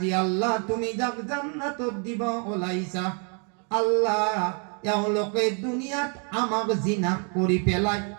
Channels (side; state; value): left; quieter; 39.5 dB